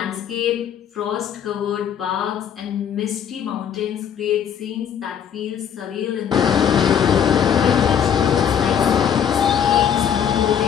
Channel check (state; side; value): quieter; right; 8.6 dB